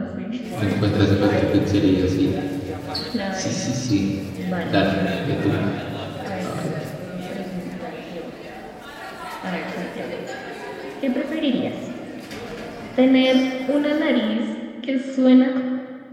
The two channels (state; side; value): identical; both; correlation 1.00